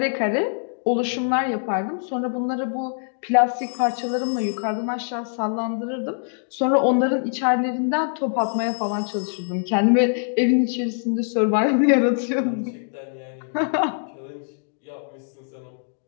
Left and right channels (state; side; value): silent; right; digital silence